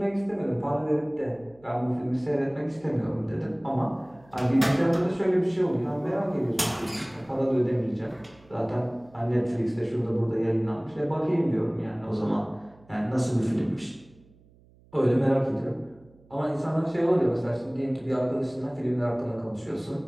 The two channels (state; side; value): noise; right; hum, 28 dB below the sound